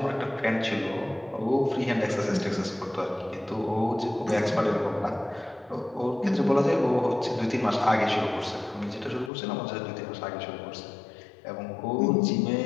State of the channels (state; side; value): drops out; right; at 9.3 s